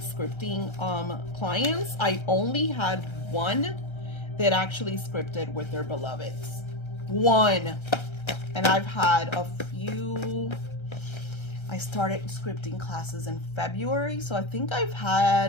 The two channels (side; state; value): right; late; 1.3 ms